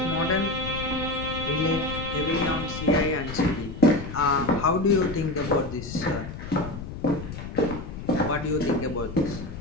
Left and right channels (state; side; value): noise; left; rumble, 9 dB below the sound